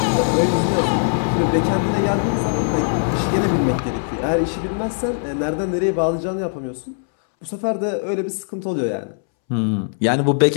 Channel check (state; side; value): silent; right; 65 dB below the other